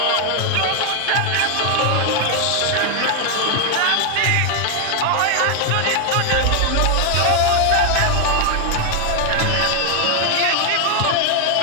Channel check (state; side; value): different; both; correlation 0.01